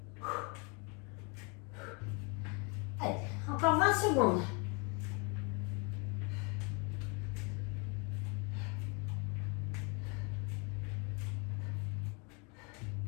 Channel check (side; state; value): right; quieter; 31.7 dB